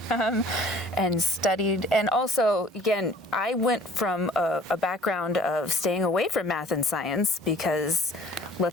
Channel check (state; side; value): normal; both; correlation 0.52